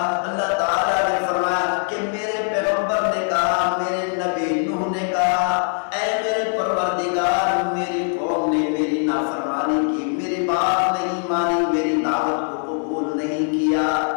اللہ تعالیٰ نے فرمایا کہ میرے پیغمبر نے کہا، میرے نبی نوح نے کہا، اے میرے پروردگار میری قوم نے میری نافرمانی کی، میری بات نہیں مانی، میری دعوت کو قبول نہیں کیا.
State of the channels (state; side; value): silent; right; 59 dB below the other